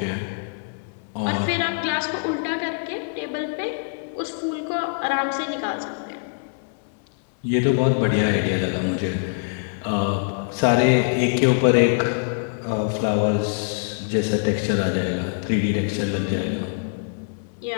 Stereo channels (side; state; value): right; silent; 63 dB below the other